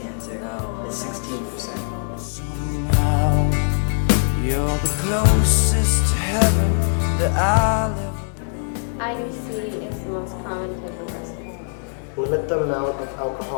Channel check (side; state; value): right; silent; digital silence